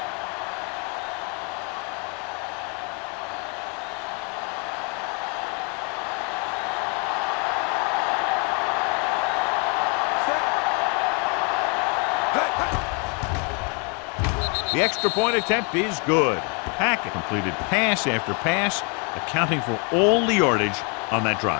The extra point attempt is good. Hackett completed pass after pass, accounting for all the yardage on that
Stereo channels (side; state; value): right; quieter; 35.4 dB